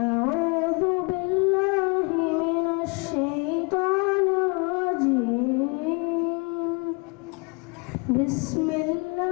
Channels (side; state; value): right; quieter; 32.5 dB